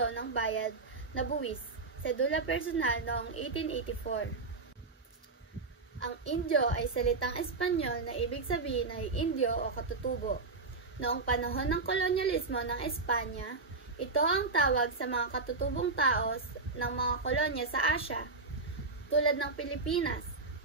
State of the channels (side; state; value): left; quieter; 3.9 dB